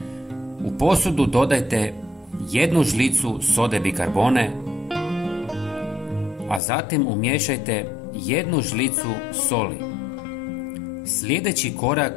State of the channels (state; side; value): drops out; right; at 6.6 s